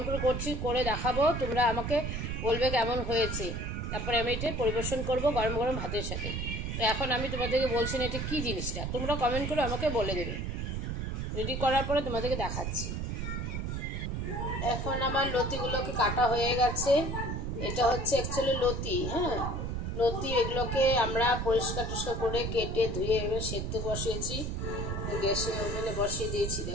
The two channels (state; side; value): noise; right; rumble, 3 dB below the sound